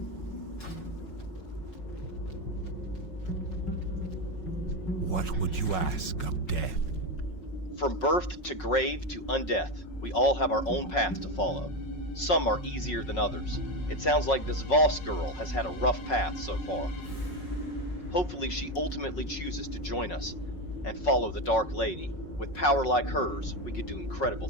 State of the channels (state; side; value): late; right; 5.4 ms